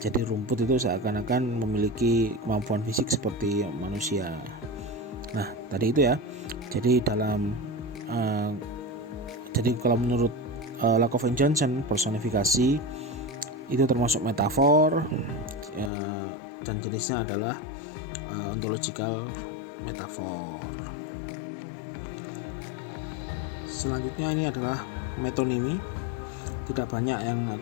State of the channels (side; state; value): right; drops out; at 15.9 s